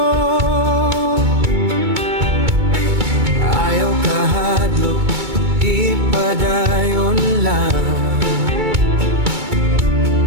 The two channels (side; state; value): left; late; 2.2 ms